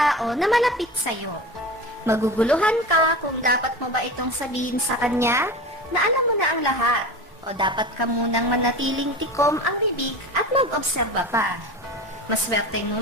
na malapit sa iyo. Maguguluhan ka kung dapat mo ba itong sabihin sa kanya na alam mo na ang lahat o dapat ka munang manatiling tikom ang bibig at mag-obserba pa. Maswerteng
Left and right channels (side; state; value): both; normal; correlation 0.30